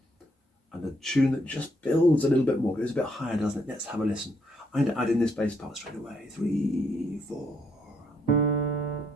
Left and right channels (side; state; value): both; normal; correlation 0.72